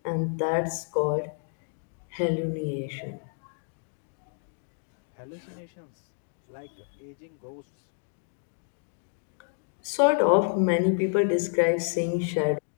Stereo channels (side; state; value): right; silent; digital silence